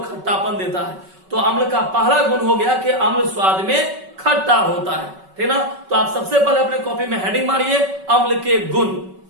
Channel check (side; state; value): left; late; 5.3 ms